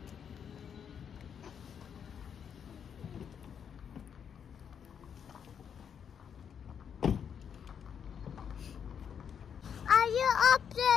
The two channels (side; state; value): right; quieter; 7.7 dB